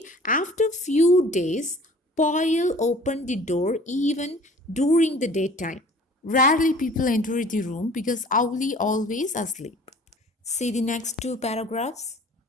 after few days, Paul opened the door even during the daytime. Rarely people enter the room because Owlie always asleep. See the next two paragraphs.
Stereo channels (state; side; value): normal; both; correlation 0.49